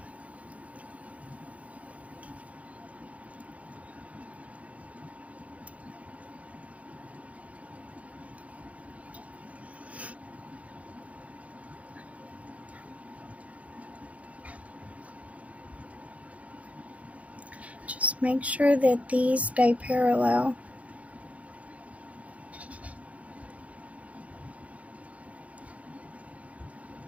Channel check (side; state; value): left; late; 0.067 ms